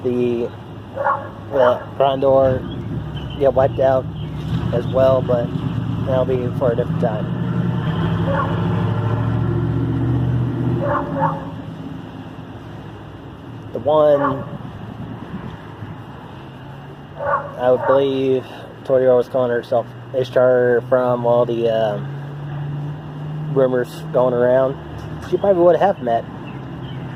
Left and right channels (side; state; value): both; identical; correlation 1.00